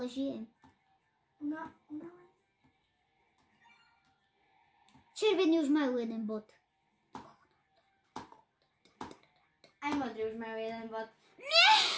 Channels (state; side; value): identical; both; correlation 1.00